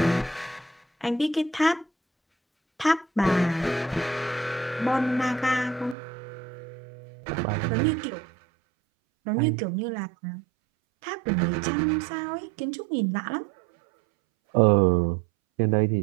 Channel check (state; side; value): drops out; left; at 6.0 s